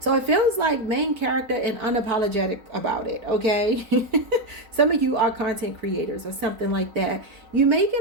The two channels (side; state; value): left; late; 4.5 ms